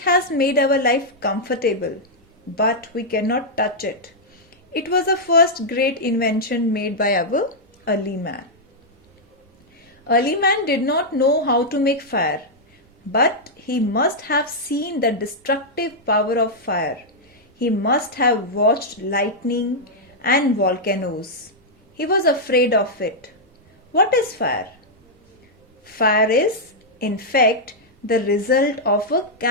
made our life comfortable, but we cannot touch it. It was the first great invention made by our early man. Early man did not know how to make fire, but he must have seen the destructive power of fire. He must have watched lightning and volcanoes. He was afraid of it. What is fire? Fire is, in fact, the result of a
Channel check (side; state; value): both; normal; correlation -0.05